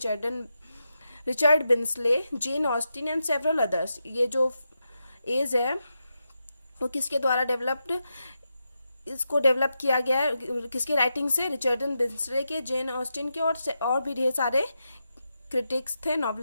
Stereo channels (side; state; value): both; inverted; correlation -0.87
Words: Richard Brinsley, Jane Austen and several others. ये जो एज है वो किसके द्वारा इसको डेवलप किया गया है, किसके राइटिंग से? रिचर्डन बिन्सले के, जेन ऑस्टिन के और भी ढेर सारे क्रिटिक्स थे,